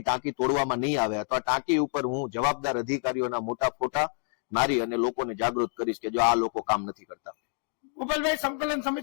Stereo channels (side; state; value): right; silent; 59 dB below the other